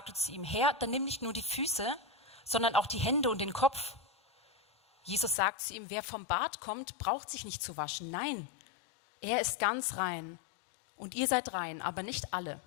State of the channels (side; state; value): right; drops out; at 5.4 s